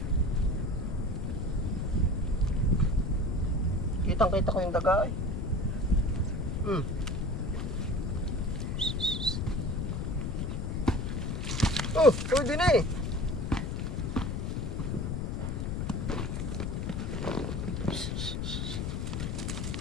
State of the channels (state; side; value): noise; left; rumble, 1 dB below the sound